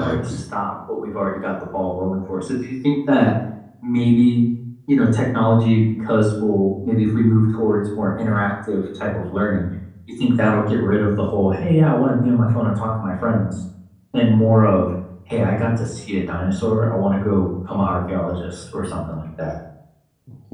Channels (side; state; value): both; identical; correlation 1.00